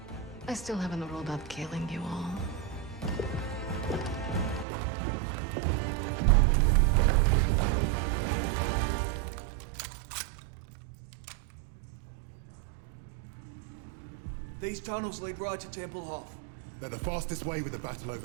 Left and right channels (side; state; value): left; drops out; at 4.7 s